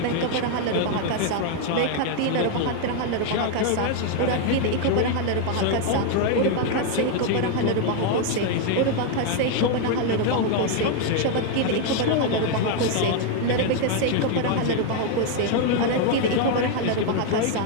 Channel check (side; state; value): both; different; correlation 0.01